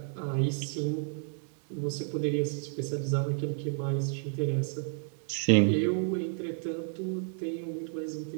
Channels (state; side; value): silent; left; 57 dB below the other